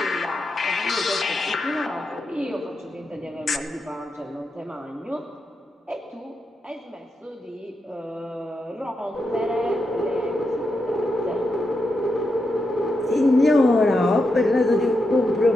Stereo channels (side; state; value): both; normal; correlation 0.85